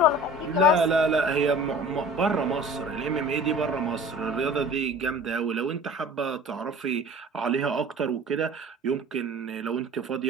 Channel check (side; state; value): both; normal; correlation 0.43